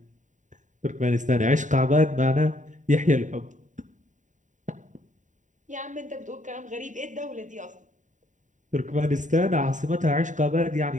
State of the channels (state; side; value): late; left; 0.36 ms